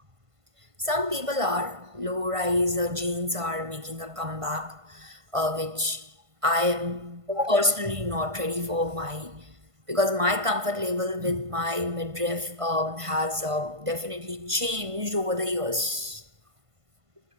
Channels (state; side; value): late; left; 1.5 ms